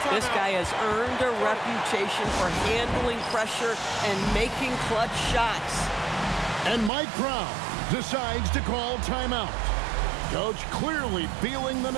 This guy has earned a reputation for handling pressure and making clutch shots. And Mike Brown decides to call timeout. Coach clearly feeling the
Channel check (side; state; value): left; drops out; at 6.9 s